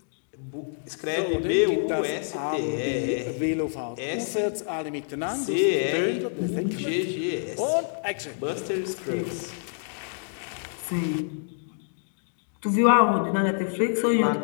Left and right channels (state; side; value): silent; right; digital silence